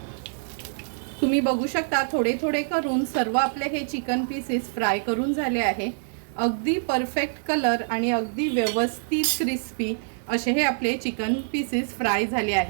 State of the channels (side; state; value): left; silent; digital silence